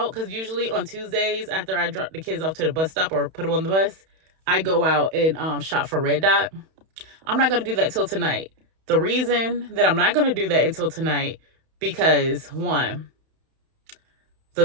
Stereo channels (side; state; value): left; late; 31 ms